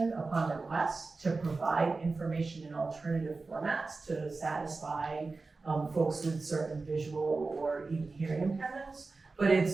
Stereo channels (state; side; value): quieter; left; 3.8 dB